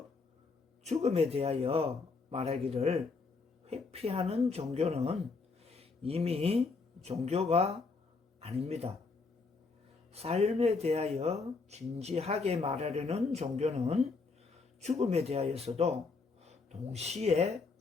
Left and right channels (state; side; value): quieter; right; 4.3 dB